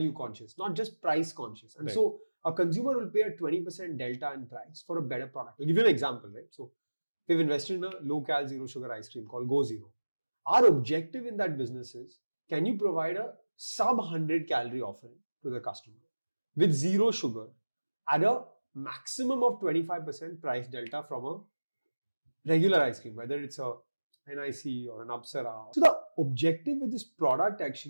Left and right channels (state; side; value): inverted; both; correlation -1.00